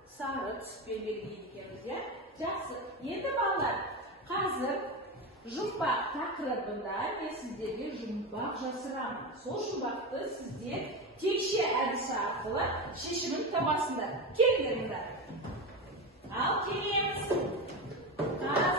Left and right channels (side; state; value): both; normal; correlation 0.19